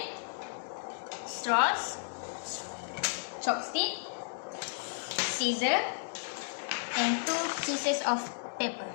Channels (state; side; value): silent; right; digital silence